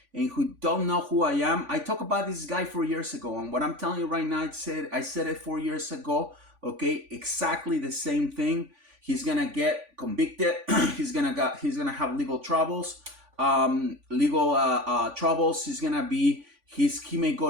and who don't know who I am, I talked about this guy 4 years ago, and what I'm telling you right now, I said it 4 years ago. Okay, exactly the same thing. He's gonna get convicted. he's gonna have legal troubles. Legal troubles. He may go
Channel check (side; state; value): left; late; 3.5 ms